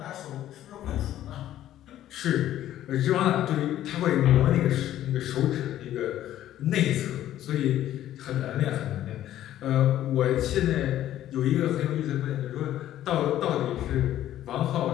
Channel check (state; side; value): quieter; right; 12.6 dB